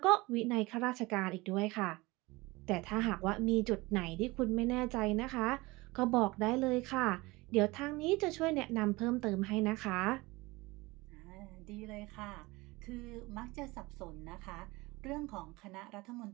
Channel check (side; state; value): left; quieter; 22.3 dB